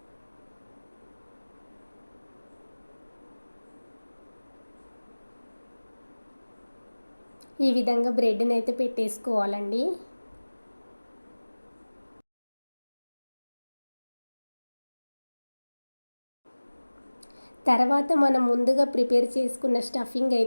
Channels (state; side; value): inverted; both; correlation -1.00